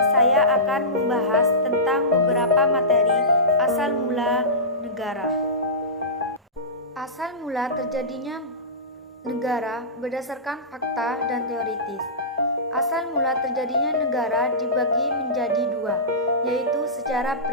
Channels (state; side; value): normal; both; correlation -0.19